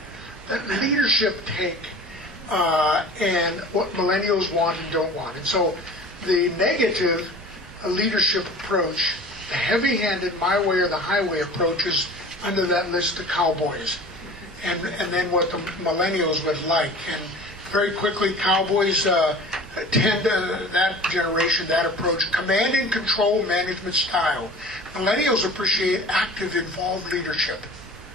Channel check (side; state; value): both; normal; correlation 0.41